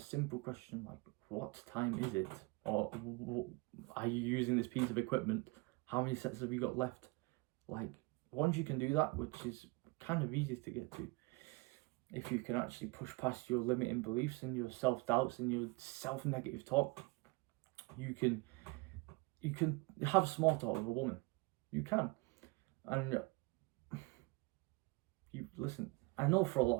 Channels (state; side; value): quieter; left; 25.1 dB